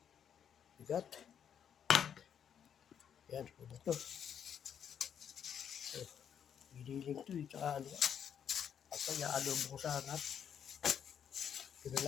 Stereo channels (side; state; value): right; quieter; 8.4 dB